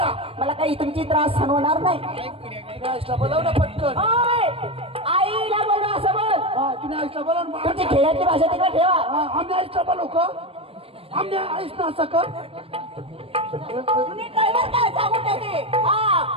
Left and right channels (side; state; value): left; late; 0.28 ms